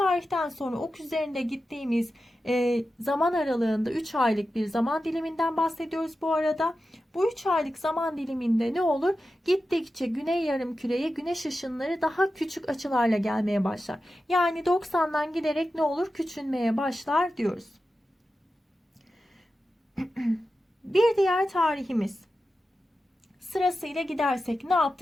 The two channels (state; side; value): normal; both; correlation 0.92